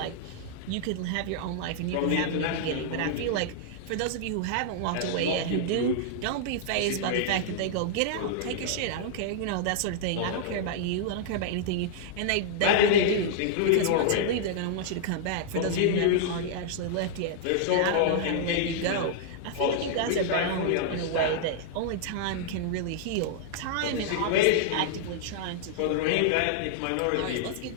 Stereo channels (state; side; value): different; both; correlation -0.01